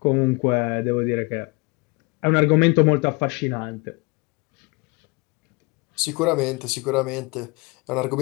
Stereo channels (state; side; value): quieter; right; 27.1 dB